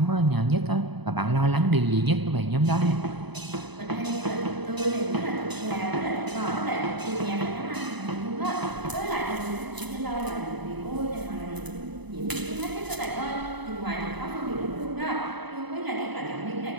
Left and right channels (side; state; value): left; late; 0.99 ms